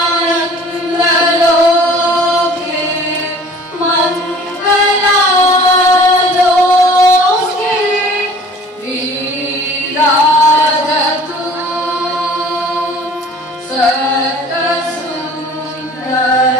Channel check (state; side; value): normal; both; correlation 0.48